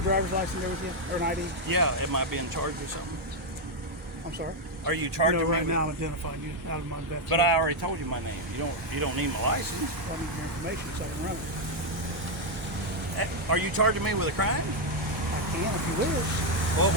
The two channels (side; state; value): both; normal; correlation 0.01